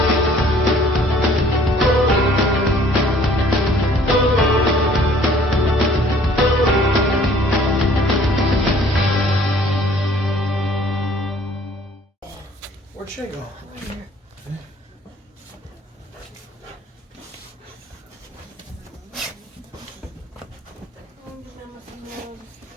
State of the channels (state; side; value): normal; both; correlation 0.56